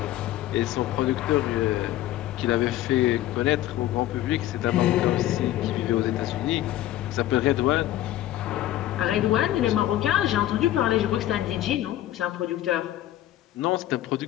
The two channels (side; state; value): right; quieter; 13.9 dB